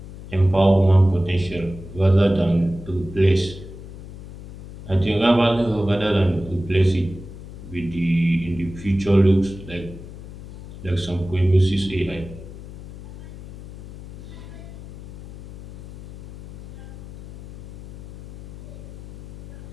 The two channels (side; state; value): left; noise; hum, 15 dB below the sound